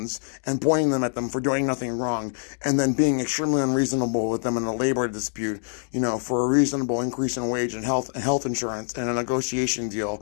and pointing them at them for doing nothing wrong, and then being extremely unreasonable with them in a labor dispute, for a reasonable increase in wage and health insurance and a negotiation deal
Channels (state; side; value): silent; right; 62 dB below the other